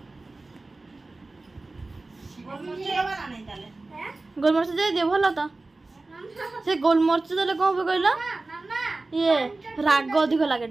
गोलमर्च दे दे भल तो से गोलमर्च देले कौन कहला ये राग अधिक लगे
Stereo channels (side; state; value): left; quieter; 3.2 dB